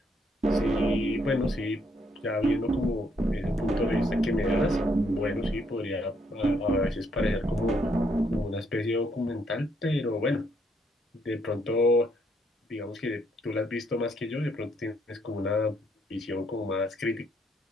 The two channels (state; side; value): normal; both; correlation 0.72